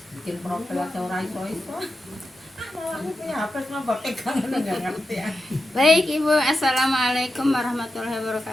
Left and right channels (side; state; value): both; normal; correlation 0.89